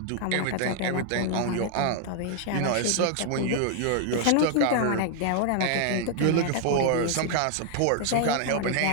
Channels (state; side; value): different; both; correlation 0.00